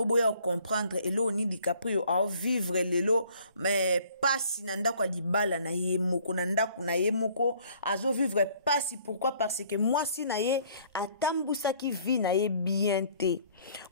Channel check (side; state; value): both; inverted; correlation -0.58